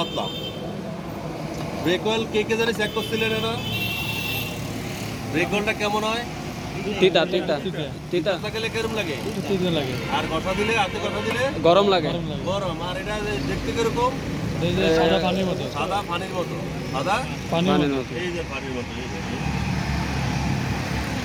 ব্রেক অয়েল কে জানি চেক করছিলেন না? ব্রেক অয়েলটা কেমন হয়? তিতা গেলে কেরম লাগে? তিতা লাগে, আর কষা দিলে, হাতে কষা দিলে গরম লাগে। গরম লাগে। গরম। আর এটা দেখতে কিরকম? এই যে সাদা পানির মতো, সাদা পানির মতো। সাদা পানির পানির মতো। মতো। এই যে পানির মতো, এই যে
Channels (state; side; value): identical; both; correlation 1.00